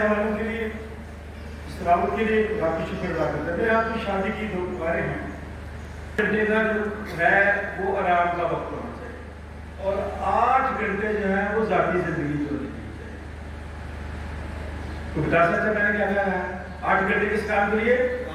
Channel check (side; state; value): both; identical; correlation 1.00